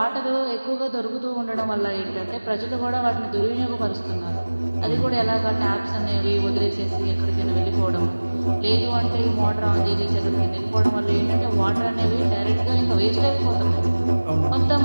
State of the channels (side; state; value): both; inverted; correlation -1.00